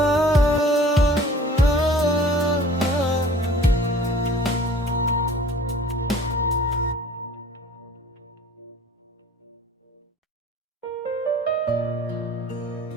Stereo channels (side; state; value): both; normal; correlation 0.48